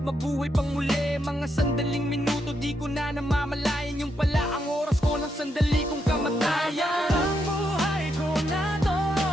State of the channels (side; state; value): both; normal; correlation 0.80